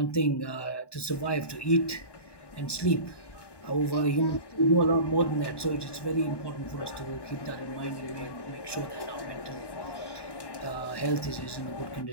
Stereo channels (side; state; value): right; late; 1.2 ms